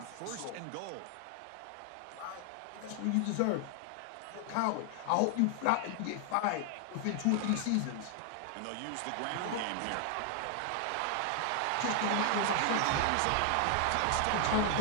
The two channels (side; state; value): both; different; correlation 0.00